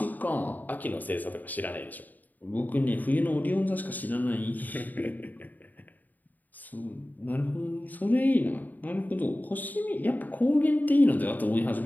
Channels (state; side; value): late; right; 0.084 ms